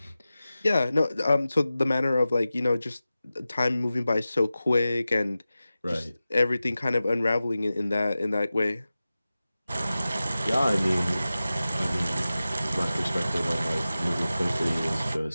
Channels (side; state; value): both; inverted; correlation -0.95